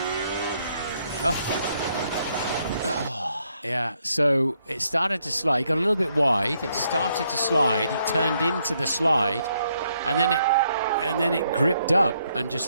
Oh. Yeah, so it started to slide. He got a little bit wide. It started to slide. He turned into the slide, and then it gripped up and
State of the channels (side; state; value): both; inverted; correlation -0.74